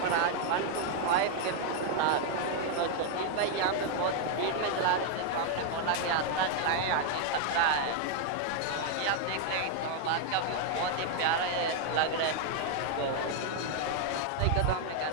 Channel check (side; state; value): both; different; correlation 0.00